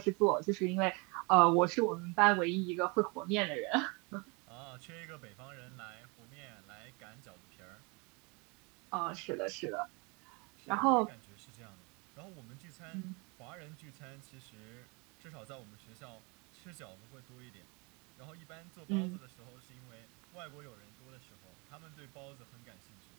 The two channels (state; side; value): quieter; left; 29.9 dB